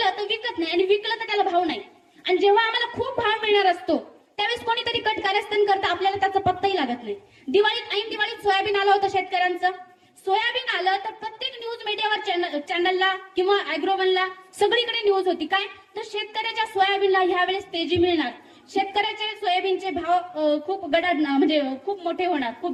तर विकत नाही आणि विकलं तर त्याला भाव नाही. आणि जेव्हा आम्हाला खूप भाव मिळणार असतो त्यावेळेस कोणीतरी कट कारस्थान करतं, आपल्याला त्याचा पत्ताही लागत नाही. ऐन दिवाळीत सोयाबीन आलं होतं शेतकऱ्यांचं. सोयाबीन आलं तर प्रत्येक न्यूज मीडियावर चॅनलला किंवा अॅग्रोवनला सगळीकडे न्यूज होती काय, तर शेतकऱ्याच्या सोयाबीनला ह्यावेळेस तेजी मिळणार, शेतकऱ्याचे सोयाबीनचे भाव खूप गडाड म्हणजे खूप मोठे होणार,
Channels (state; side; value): identical; both; correlation 1.00